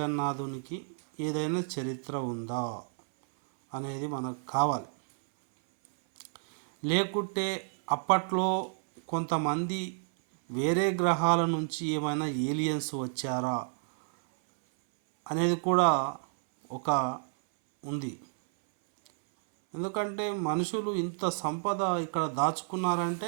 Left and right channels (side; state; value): left; silent; 58 dB below the other